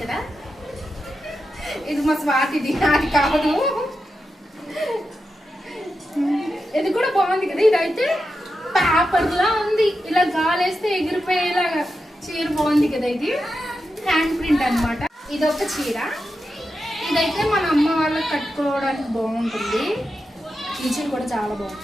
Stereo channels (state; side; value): normal; both; correlation 0.89